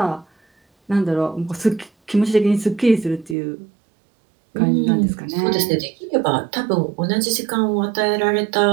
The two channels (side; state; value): left; drops out; at 3.4 s